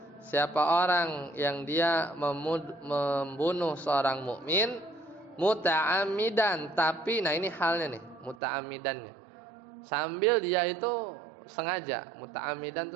siapa orang yang dia membunuh seorang mukmin muta'ammidan, tapi nah ini halnya nih muta'ammidannya sambil dia itu sengaja, muta'ammidan itu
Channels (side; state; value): left; drops out; at 8.3 s